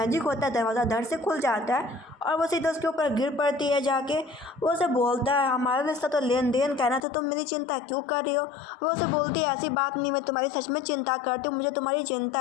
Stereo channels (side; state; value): right; drops out; at 7.0 s